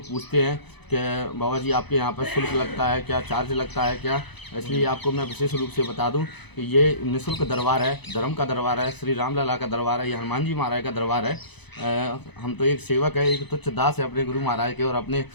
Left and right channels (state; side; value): late; right; 0.99 ms